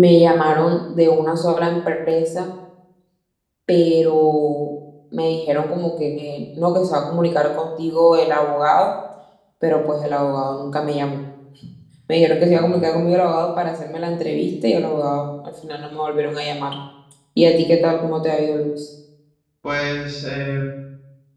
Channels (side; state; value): both; identical; correlation 1.00